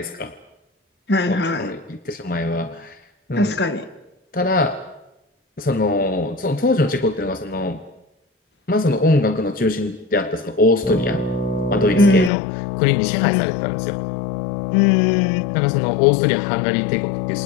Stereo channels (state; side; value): drops out; right; at 12.3 s